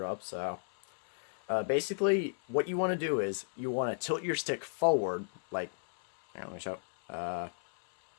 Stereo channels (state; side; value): silent; right; 56 dB below the other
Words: up, so... basically, what you want to do is, you want to tilt your stick forward, like... Here, let me show.